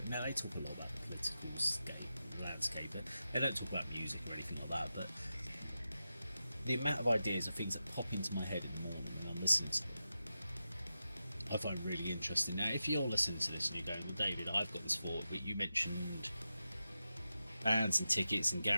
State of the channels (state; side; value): inverted; both; correlation -0.91